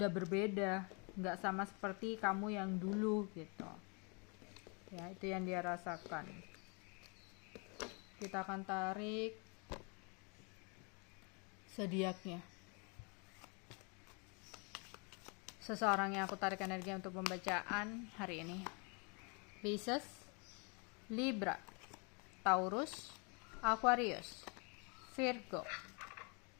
berbeda, nggak sama seperti kamu yang dulu gitu. Ya, itu yang dia rasakan. Kita akan tarik zodiaknya. Seseorang yang aku tarik energi untuk pembacaan hari ini. Pisces, Libra, Taurus, Aquarius, Virgo,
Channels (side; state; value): right; quieter; 33.7 dB